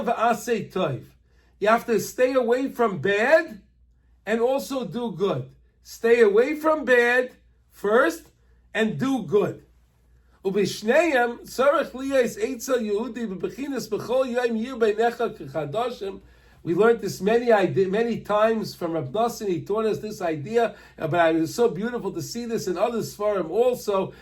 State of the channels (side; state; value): both; identical; correlation 1.00